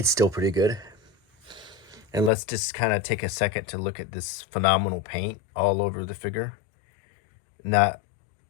still pretty good. And let's just kind of take a second to look at this phenomenal paint all over the figure. The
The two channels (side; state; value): right; drops out; at 2.3 s